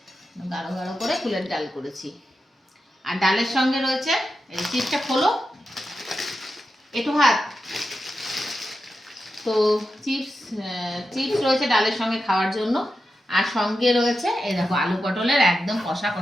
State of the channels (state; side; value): normal; both; correlation 0.89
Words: গাঢ় গাঢ় করে কুলের ডাল করেছি। আর ডালের সঙ্গে রয়েছে এই চিপসটা খোলো, একটু ভাত। তো চিপস চিপস রয়েছে ডালের সঙ্গে খাওয়ার জন্য। আর সঙ্গে রয়েছে এই দেখো আলু পটলের একদম কষা